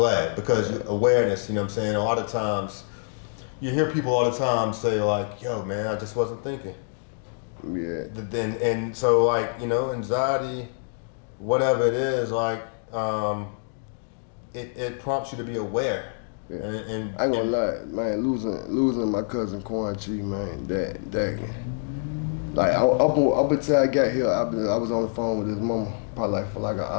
because awareness. You know what I'm saying? A lot of times, you hear people all the time say like, "Yo, man, I just wasn't thinking." Yeah. And so like, you know, anxiety, whatever it is, like, it prompts you to be aware. Yeah. And I ain't gonna lie, man, losing my cousin Quan Chi, man, that like up until I got here, I was on the phone with his mama probably like for like an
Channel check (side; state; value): right; silent; digital silence